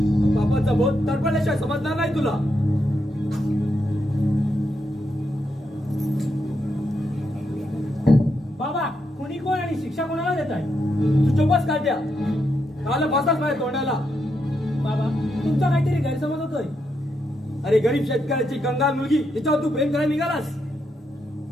बापाचा बोध तडपडल्याशिवाय समजणार नाही तुला. बाबा, कोणी कोण आणि शिक्षा कोणाला देत आहे? तू चोपच काढ्या. काल बसाच माझ्या तोंडाला. बाबा, तुमचा काहीतरी गैरसमज होतोय. अरे गरीब शेतकऱ्याची कंगाल मुलगी तिच्यावर तू प्रेम करायला निघालास.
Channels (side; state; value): both; normal; correlation 0.81